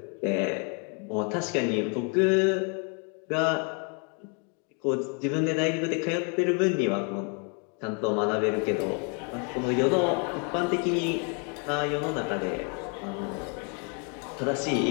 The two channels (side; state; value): right; quieter; 37.5 dB